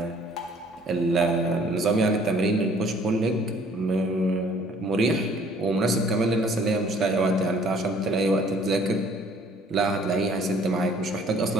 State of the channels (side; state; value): both; normal; correlation 0.57